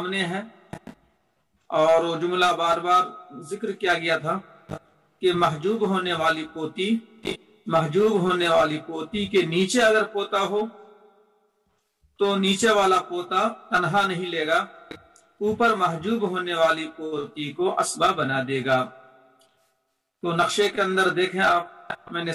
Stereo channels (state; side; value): identical; both; correlation 1.00